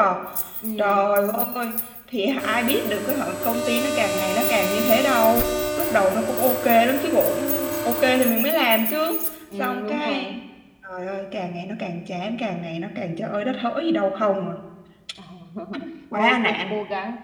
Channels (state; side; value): identical; both; correlation 1.00